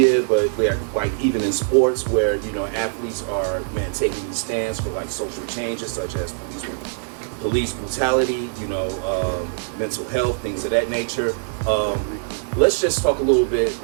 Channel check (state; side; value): silent; left; digital silence